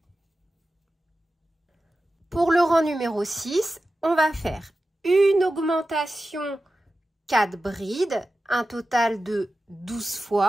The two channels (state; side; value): normal; both; correlation 0.93